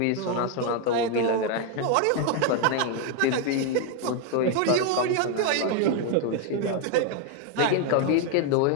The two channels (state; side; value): different; both; correlation 0.01